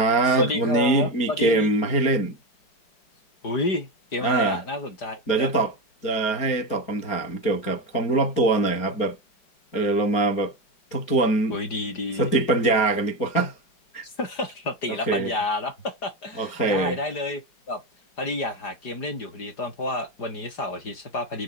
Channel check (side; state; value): right; late; 4.9 ms